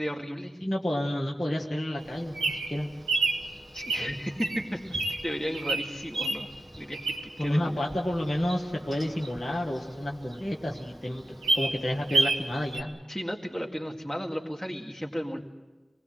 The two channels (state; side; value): normal; both; correlation 0.90